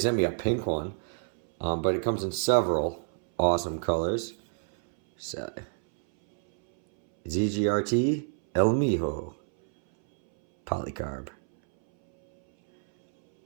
me a pink one. But it comes in several awesome colors. So, ZGRT MiJo Polycarb.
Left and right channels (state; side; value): silent; left; 60 dB below the other